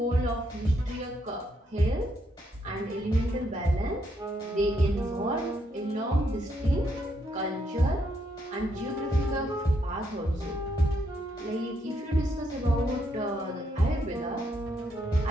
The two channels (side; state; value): both; normal; correlation 0.76